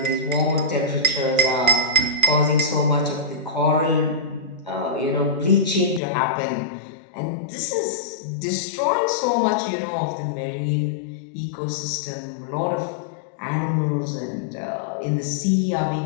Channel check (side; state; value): right; drops out; at 6.0 s